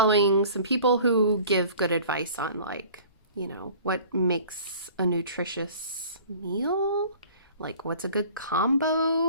some people who give good advice on like, what makes a nutritious meal, like what's a good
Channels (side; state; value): both; inverted; correlation -0.47